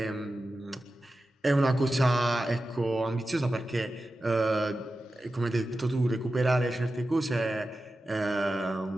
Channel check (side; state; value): both; normal; correlation 0.93